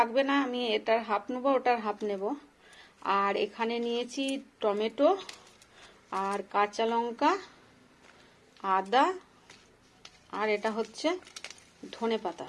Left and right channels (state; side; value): identical; both; correlation 1.00